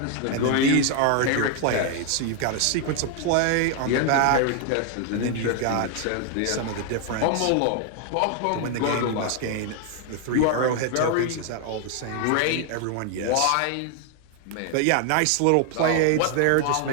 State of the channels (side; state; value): both; different; correlation 0.00